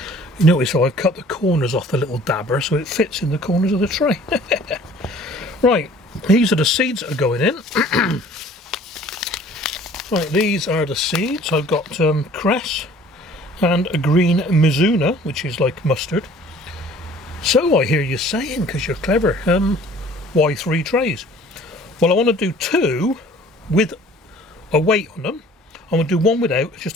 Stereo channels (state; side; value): normal; both; correlation 0.51